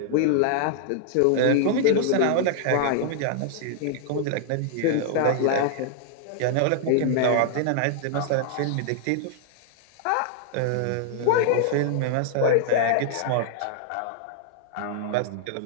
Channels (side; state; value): both; different; correlation -0.01